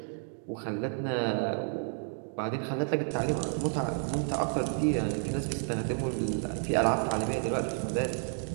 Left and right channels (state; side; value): silent; left; 57 dB below the other